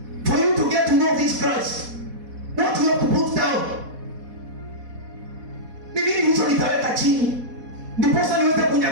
For you to get to know this Christ, what you have to put down? Ni nini hicho nitaweka chini ndiposa niweze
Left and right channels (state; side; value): late; left; 4.1 ms